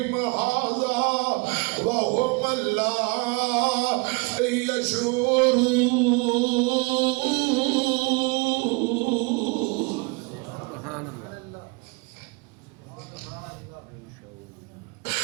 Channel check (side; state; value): left; quieter; 29.0 dB